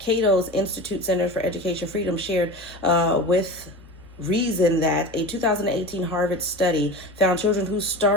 Institute Center for Education Freedom shared with Reason that a 2018 Harvard study found children who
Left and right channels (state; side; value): normal; both; correlation 0.31